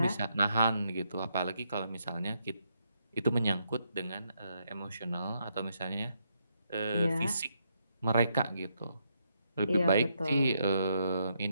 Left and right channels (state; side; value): inverted; both; correlation -0.78